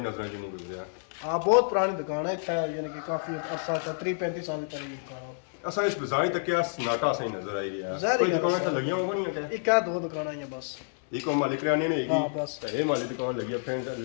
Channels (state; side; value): silent; right; 59 dB below the other